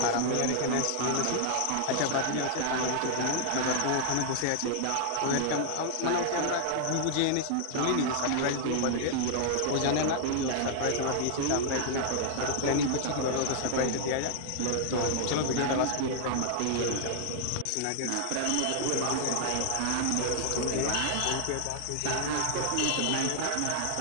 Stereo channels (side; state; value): both; different; correlation 0.00